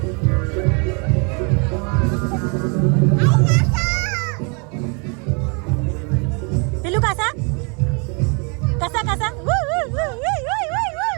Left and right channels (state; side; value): quieter; left; 34.7 dB